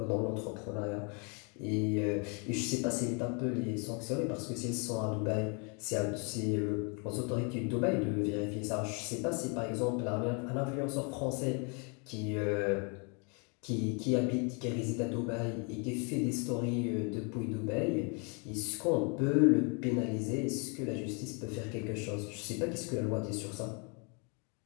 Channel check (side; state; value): right; quieter; 35.5 dB